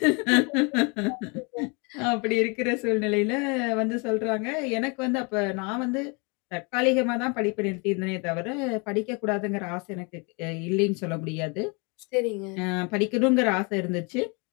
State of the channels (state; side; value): quieter; right; 31.6 dB